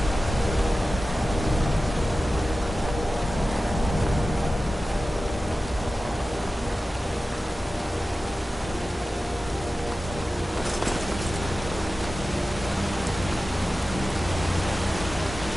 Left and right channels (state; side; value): normal; both; correlation 0.95